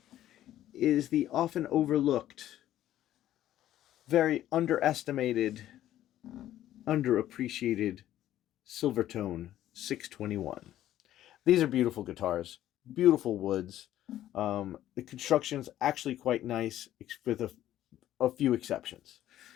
is the often overlooked, very underestimated, underappreciated Silvertone 621. These are beautiful guitars, beautiful woods. The construction's actually quite nice, with a few exceptions.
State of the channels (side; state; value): right; quieter; 12.8 dB